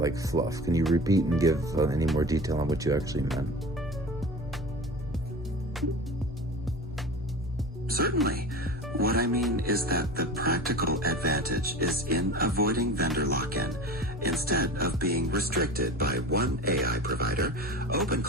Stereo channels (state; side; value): normal; both; correlation 0.33